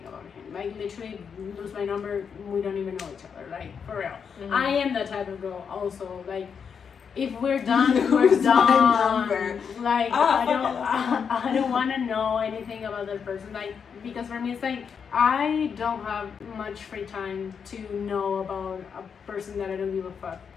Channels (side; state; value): right; quieter; 6.7 dB